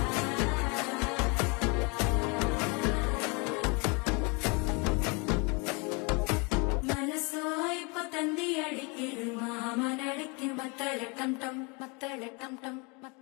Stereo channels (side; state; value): right; quieter; 30.8 dB